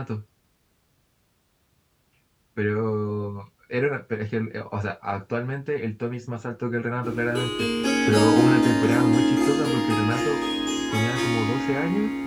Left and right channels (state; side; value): identical; both; correlation 1.00